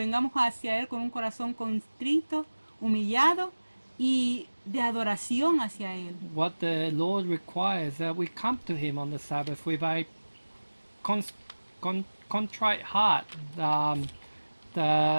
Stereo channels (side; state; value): both; inverted; correlation -1.00